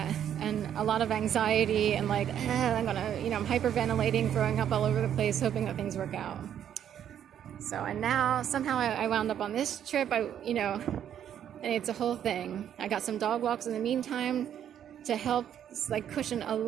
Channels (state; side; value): quieter; left; 9.8 dB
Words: and a lot of anxiety, and I'm hyperventilating, throwing up all over the place, hoping that things work out. So, and now somehow I wound up on this trip. And it's a whole thing. I got some dog walks in the meantime to help cushion a